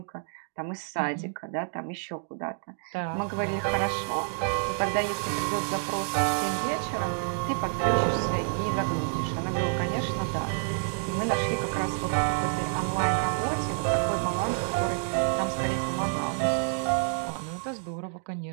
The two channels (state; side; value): silent; left; 59 dB below the other